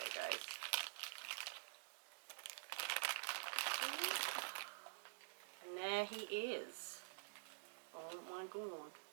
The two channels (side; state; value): left; silent; digital silence